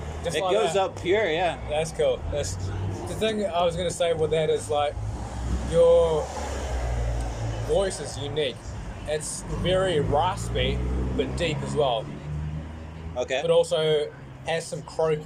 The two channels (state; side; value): identical; both; correlation 1.00